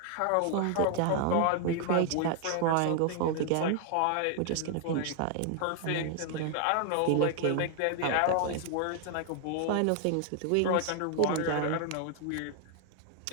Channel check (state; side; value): different; both; correlation 0.00